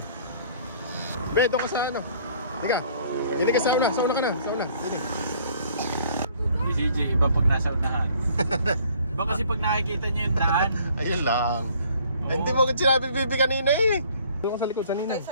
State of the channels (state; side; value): inverted; both; correlation -0.58